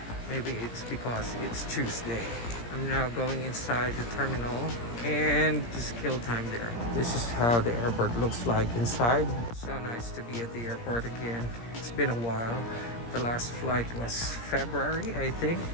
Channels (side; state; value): right; late; 17 ms